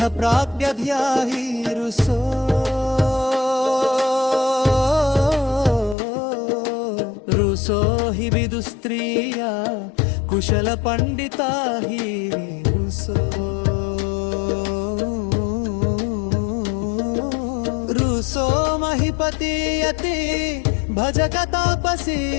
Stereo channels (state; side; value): drops out; right; at 6.0 s